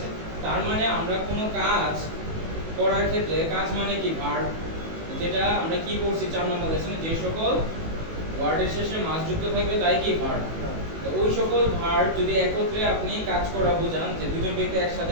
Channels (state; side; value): late; left; 18 ms